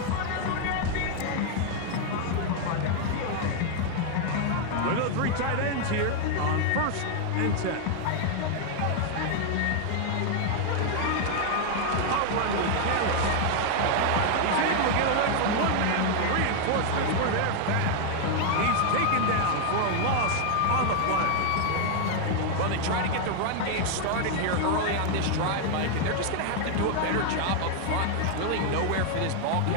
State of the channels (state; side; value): different; both; correlation 0.00